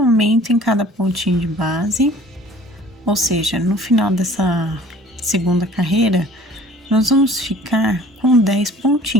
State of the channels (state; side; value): normal; both; correlation 0.50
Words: em cada pontinho de base, ou seja, no final dessa segunda carreira, nós vamos ficar com 10